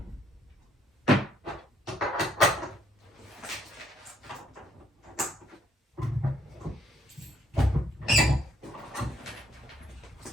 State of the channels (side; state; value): both; normal; correlation 0.68